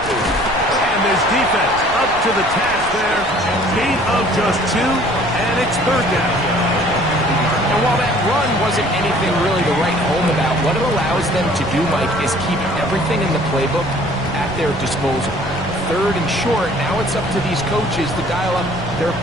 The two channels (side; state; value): right; noise; rumble, 13 dB below the sound